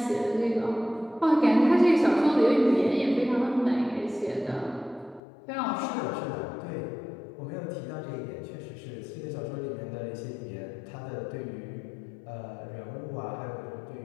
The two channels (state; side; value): drops out; right; at 5.2 s